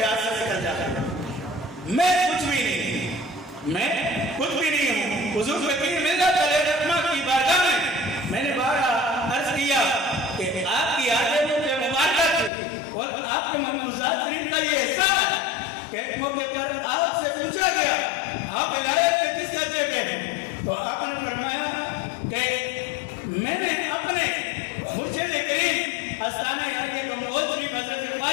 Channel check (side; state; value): right; drops out; at 12.5 s